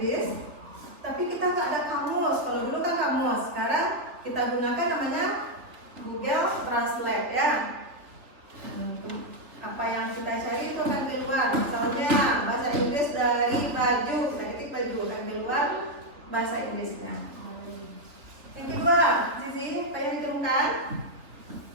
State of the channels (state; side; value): late; left; 3.2 ms